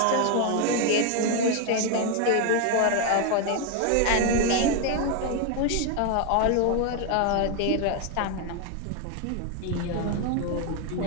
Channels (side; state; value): both; different; correlation 0.01